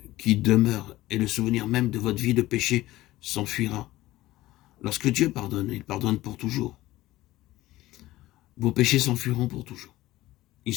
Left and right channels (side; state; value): right; quieter; 16.9 dB